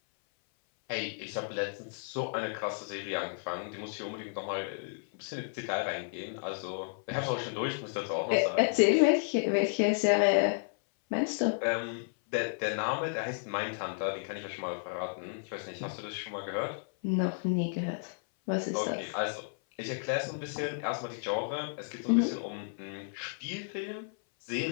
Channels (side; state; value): right; silent; 56 dB below the other